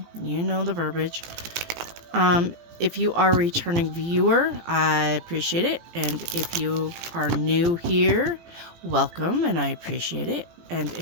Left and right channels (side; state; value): left; late; 17 ms